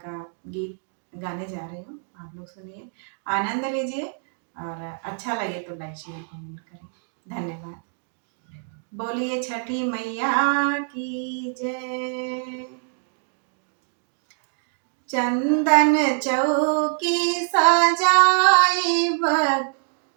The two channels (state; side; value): silent; left; 62 dB below the other